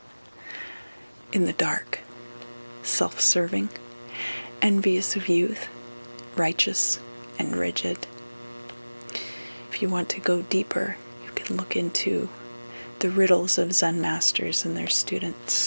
In the dark, self-serving, envious of youth, righteous, and rigid. If you want to go deeper, you can look into the riddles of Zen masters and their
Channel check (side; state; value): both; inverted; correlation -1.00